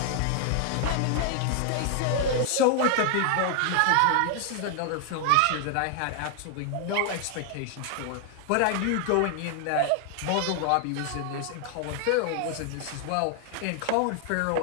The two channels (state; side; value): different; both; correlation 0.00